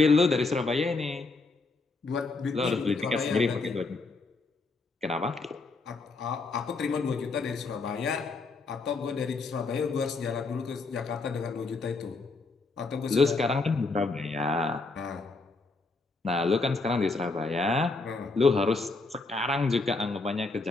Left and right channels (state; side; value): quieter; right; 3.8 dB